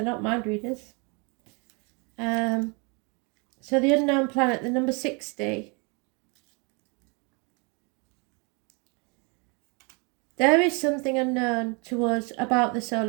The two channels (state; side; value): quieter; left; 32.0 dB